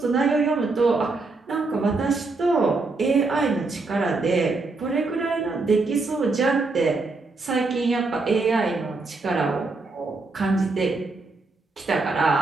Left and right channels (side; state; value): left; quieter; 3.6 dB